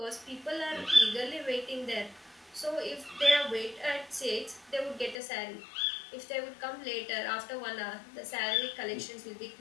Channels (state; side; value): drops out; right; at 5.2 s